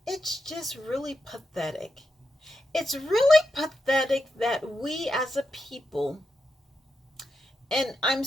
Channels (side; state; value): both; normal; correlation 0.86